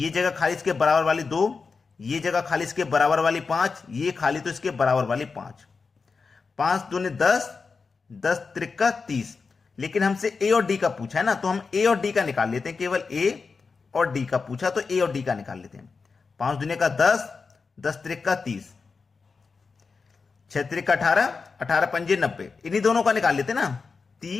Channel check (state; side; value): quieter; right; 4.7 dB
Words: जगह खाली इसके बराबर वाली 2, ये जगह खाली इसके बराबर वाली 5, ये खाली तो इसके बराबर वाली 5। 5 दूनी 10, 10 त्रिका 30। लेकिन हमसे ए और डी का पूछा है ना, तो हम ए और डी का निकाल लेते हैं। केवल ए और डी का पूछा तो ए और डी का निकाल लेते हैं। 5 दूनी का 10, 10 त्रिका 30, 6 त्रिका 18, 18 पंजे 90, इन्हीं दोनों का निकाल लेते ना,